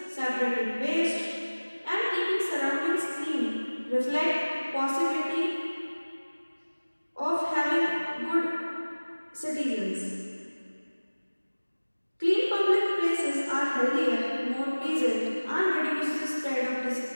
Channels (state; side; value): inverted; both; correlation -1.00